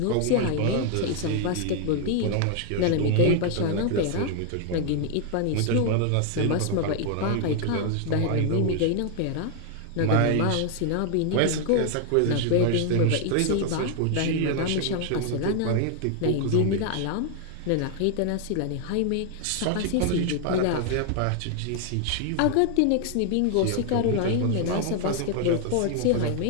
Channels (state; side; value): different; both; correlation 0.00